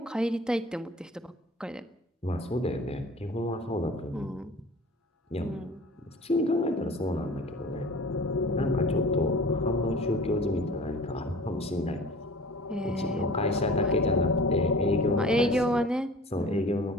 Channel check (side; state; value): both; normal; correlation 0.43